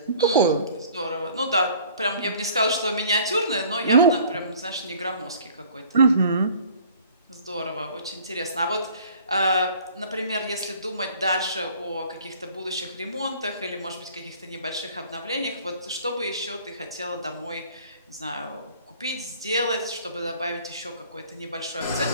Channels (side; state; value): both; inverted; correlation -0.52